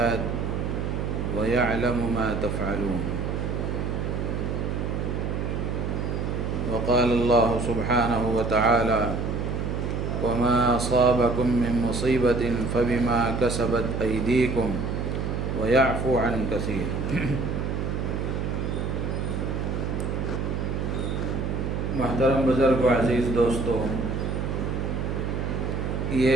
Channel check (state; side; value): noise; right; hum, 1 dB below the sound